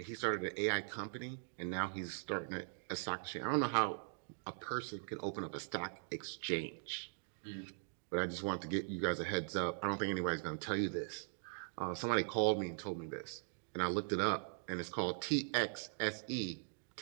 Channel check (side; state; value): left; silent; digital silence